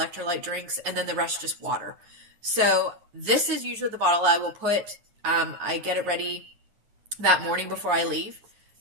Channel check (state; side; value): late; left; 9.5 ms